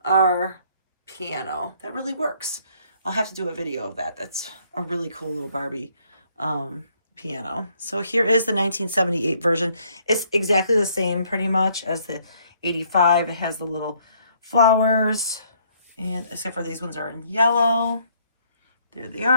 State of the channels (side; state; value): both; inverted; correlation -0.66